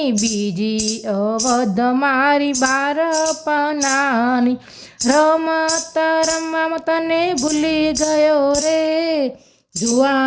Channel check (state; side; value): identical; both; correlation 1.00